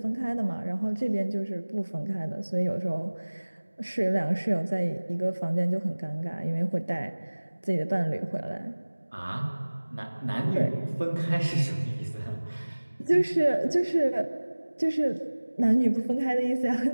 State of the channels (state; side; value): inverted; both; correlation -1.00